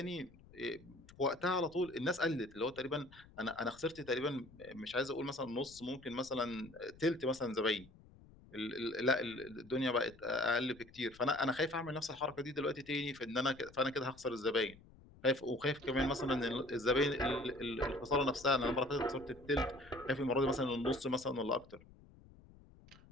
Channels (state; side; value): noise; left; rumble, 23 dB below the sound